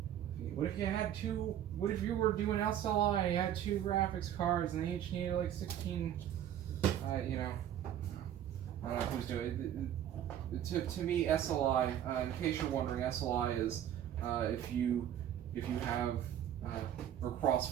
What if you had two? What if you were doing SLI and you had two graphics cards and they each needed like 16? You know, I don't know who's doing it. To me, SLI. In case you're wondering, SLI is if you have or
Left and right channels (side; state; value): left; quieter; 10.8 dB